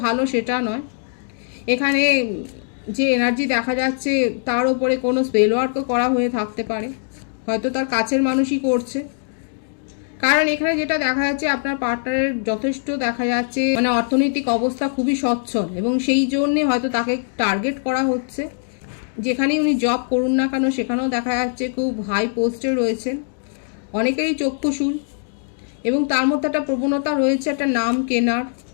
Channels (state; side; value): silent; right; digital silence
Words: ভালো সেটা নয়। এখানে যে এনার্জি দেখা যাচ্ছে তার ওপরে কোনো স্পেল ওয়ার্কও করা হয়ে থাকতে পারে, হয়তো তার কাছের মানুষই করছে। কারণ এখানে যেটা দেখা যাচ্ছে আপনার পার্টনারের যথেষ্ট দেখা যাচ্ছে মানে অর্থনৈতিক অবস্থা খুবই সচ্ছল, এবং সেই জন্যে হয়তো তাকে টার্গেট করা হচ্ছে। যেখানেই উনি জব করুন না কেন সেখানেও দেখা যাচ্ছে খুব হাই পোস্টে রয়েছেন, অনেকেরই চক্ষুশূল, এবং তার মধ্যে একটা প্রবণতা রয়েছে একটা নাম কেনার,